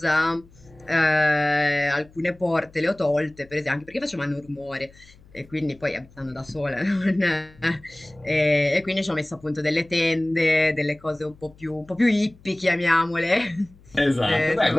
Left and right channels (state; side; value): noise; left; hum, 26 dB below the sound